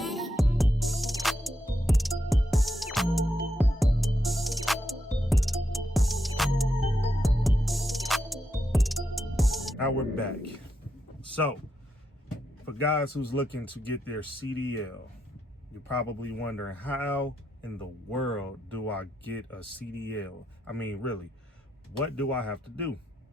Now we're back. So, for guys who's looking to get their CDL, you're probably wondering, how in the world do I get a CDL? I mean, really, what do I have to do?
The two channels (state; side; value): normal; both; correlation 0.82